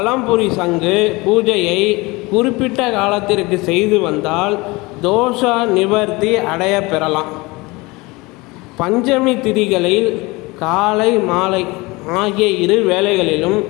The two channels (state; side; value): quieter; right; 23.6 dB